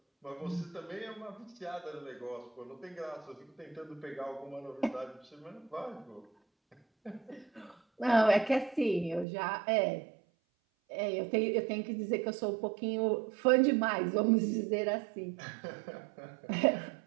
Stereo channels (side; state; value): left; drops out; at 9.2 s